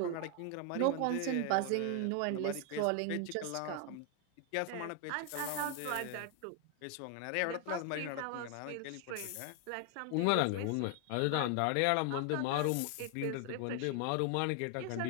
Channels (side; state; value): both; different; correlation 0.00